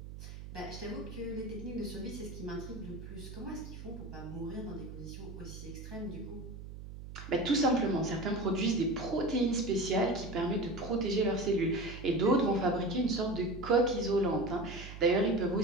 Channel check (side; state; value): right; noise; hum, 12 dB below the sound